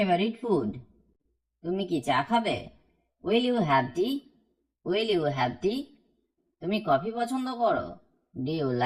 food? তুমি কি চা খাবে? Will you have tea? Will you have tea? তুমি কফি পছন্দ করো? Do you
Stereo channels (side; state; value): both; identical; correlation 1.00